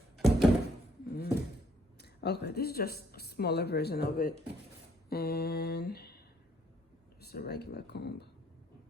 Okay, this is just a smaller version of it. And just a regular comb.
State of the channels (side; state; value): both; normal; correlation 0.65